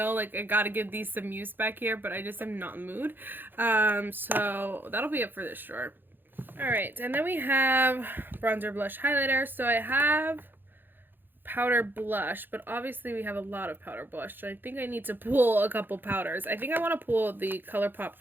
like, I gotta give these some use back here, but I just am not in the mood. So that'll be it for this drawer. Alright, and then we have bronzer, blush, highlighter. So I have powder blush, but obviously we have a lot of powder blush, so I think I need to pull a couple powders. I think I want to pull the ColourPop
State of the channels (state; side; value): late; left; 0.095 ms